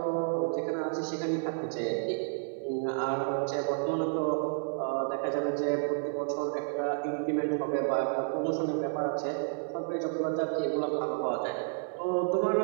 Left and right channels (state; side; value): silent; left; 57 dB below the other